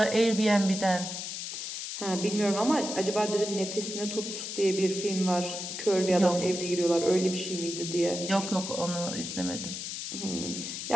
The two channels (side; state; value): left; noise; hiss, 6 dB below the sound